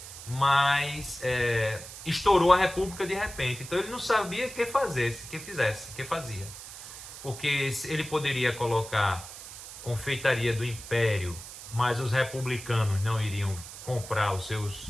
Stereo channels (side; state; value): right; noise; hiss, 13 dB below the sound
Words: mas estourou a república de repente. Então ele não sabia o que fazia. Porque ele poderia colocar Confeitaria do Império, mas os republicanos não iriam comprar